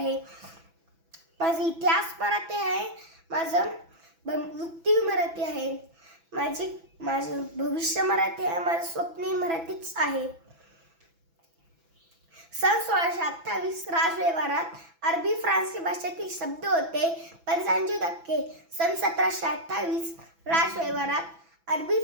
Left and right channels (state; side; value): late; left; 6.0 ms